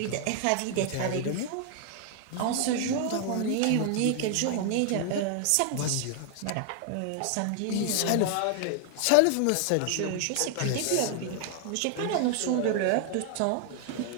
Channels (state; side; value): different; both; correlation 0.00